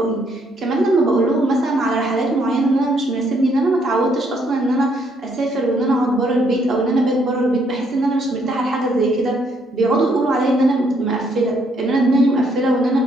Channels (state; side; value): normal; both; correlation 0.70